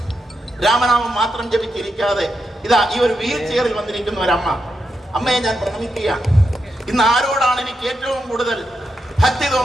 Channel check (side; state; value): both; normal; correlation 0.85